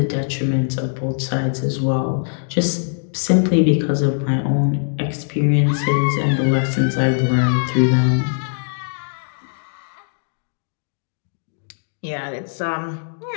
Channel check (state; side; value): silent; right; digital silence